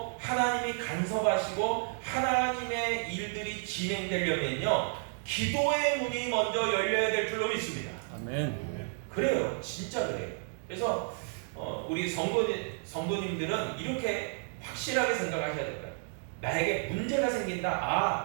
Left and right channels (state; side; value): silent; left; 57 dB below the other